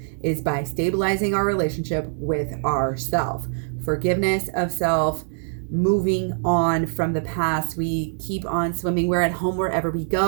is by stabilizing our relationship with ourself. Forgiveness of self, moving on from the past. We keep on swimming. We're at home wherever we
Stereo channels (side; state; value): left; silent; 61 dB below the other